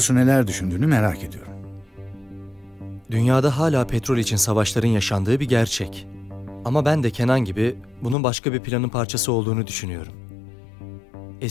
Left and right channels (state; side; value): drops out; right; at 8.2 s